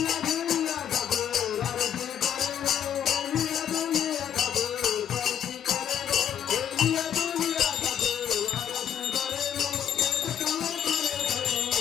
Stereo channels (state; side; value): quieter; right; 9.4 dB